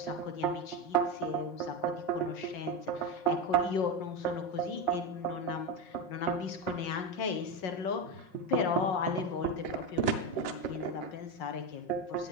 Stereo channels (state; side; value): late; right; 5.6 ms